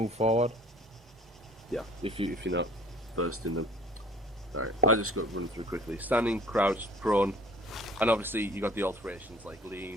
forward. Yeah, if you're not versed in them. Alright, I just got to run through quickly. Standing, crouch, prone, and obviously you got the alterations like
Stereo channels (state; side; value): normal; both; correlation 0.52